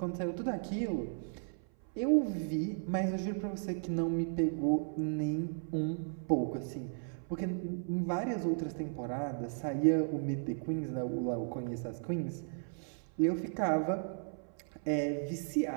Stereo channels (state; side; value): silent; left; 54 dB below the other